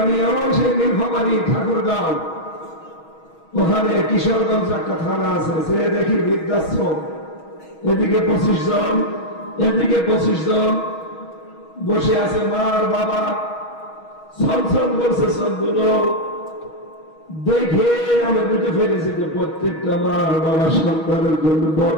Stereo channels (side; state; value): right; late; 6.3 ms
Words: আমি সেই নীলফামারী ঠাকুরগাঁও, ওখানে কিশোরগঞ্জ একটা থানা আছে, সে দেখি বৃদ্ধাশ্রম, এদিকে 25 জন, এদিকে 25 জন বসে আছে মা আর বাবা, ছলছল করছে সবগুলো। দেখে আমি বুঝে ফেলেছি যে প্রত্যেকটা মা আর বাবার সন্তানের জন্য